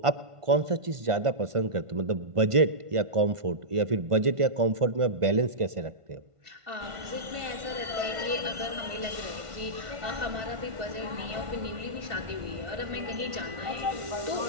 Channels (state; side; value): late; left; 1.5 ms